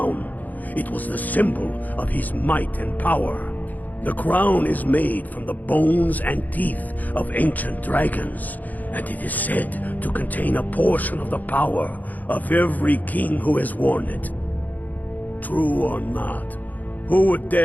It was the symbol of his might and power. The crown is made from the bones and teeth of ancient dragons, and it is said to contain a portion of the power of every king who has worn it. True or not, who would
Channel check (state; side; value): late; right; 0.081 ms